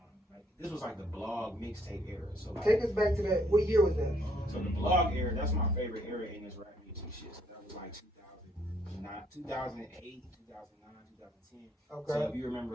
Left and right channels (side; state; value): both; normal; correlation 0.68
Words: like this was like the blog mixtape era. So like, take us back to that. What year was that? So the blog era, that's my favorite era in this rap music shit. So that was like 2009, 2008, 2009, 2010. Okay. So if you